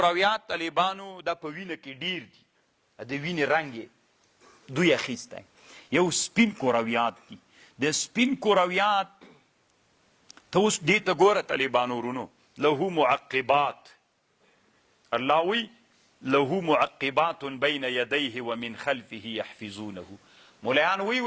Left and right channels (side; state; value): both; identical; correlation 1.00